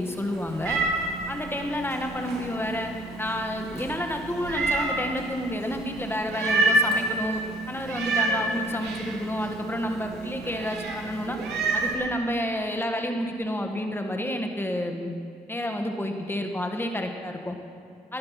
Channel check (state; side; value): normal; both; correlation 0.61